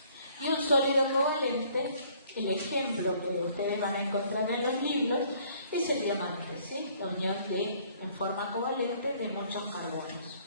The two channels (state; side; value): inverted; both; correlation -0.60